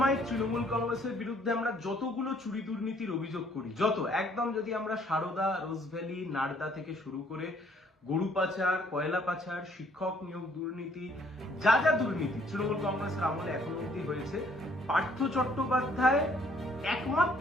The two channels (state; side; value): normal; both; correlation 0.63